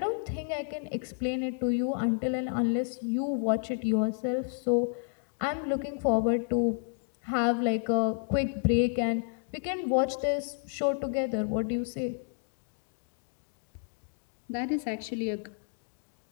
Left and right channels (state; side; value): silent; right; 57 dB below the other